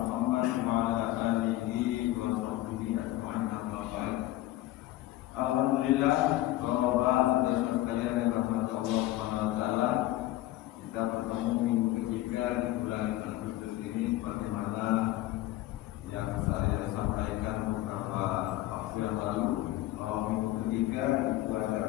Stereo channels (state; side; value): quieter; right; 15.9 dB